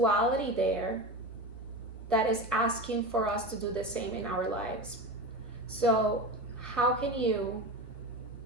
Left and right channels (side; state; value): both; normal; correlation 0.26